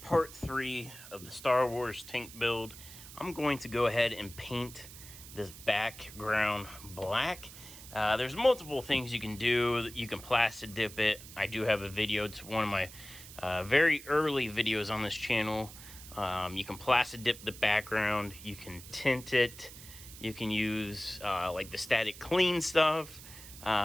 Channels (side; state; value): right; noise; hiss, 16 dB below the sound